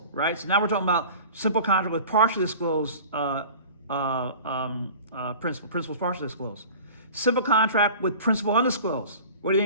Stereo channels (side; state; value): both; inverted; correlation -0.40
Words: right? So now we're talking about simple contract with partially disclosed principal. Principal's partially disclosed. Simple contract with principal undisclosed. What do you